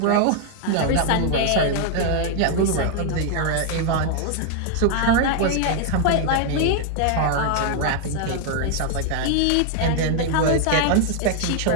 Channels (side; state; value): both; different; correlation 0.00